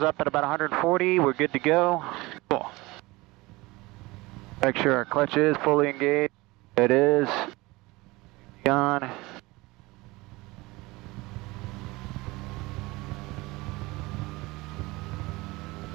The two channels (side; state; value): left; quieter; 21.9 dB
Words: up at about 140, we're good to go. Cool. Make sure our clutch is fully engaged. It is. On.